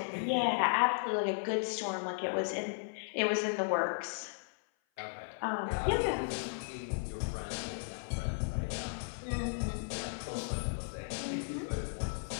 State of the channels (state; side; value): silent; right; 54 dB below the other